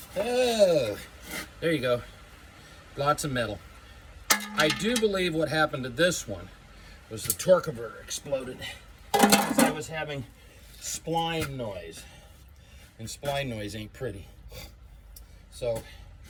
Oh, there you go. Lots of metal. I do believe what happened to this one was the torque converter exploded because I was having spline noise, and spline noise ain't pretty. So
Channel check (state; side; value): identical; both; correlation 1.00